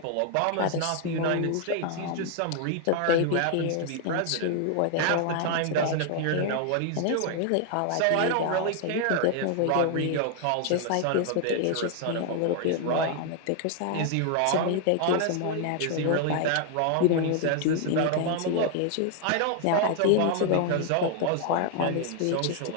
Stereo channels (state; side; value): different; both; correlation 0.00